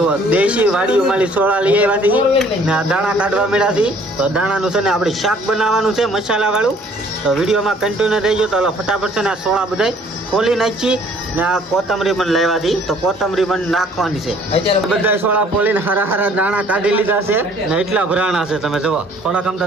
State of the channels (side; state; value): both; normal; correlation 0.57